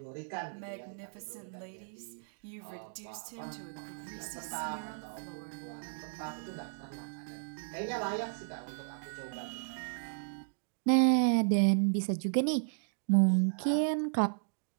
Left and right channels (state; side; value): silent; left; digital silence